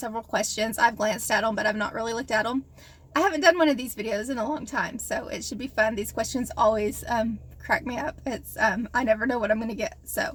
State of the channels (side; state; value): both; identical; correlation 1.00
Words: questions. I've glanced at them, but I've not really looked at them. I haven't done one of these videos in a long time, so it should be fun. These questions always crack me up. It's I never know what I'm going to get.